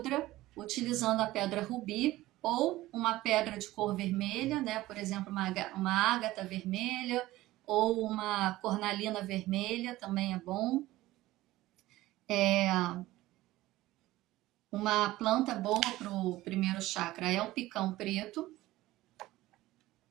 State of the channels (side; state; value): left; quieter; 17.0 dB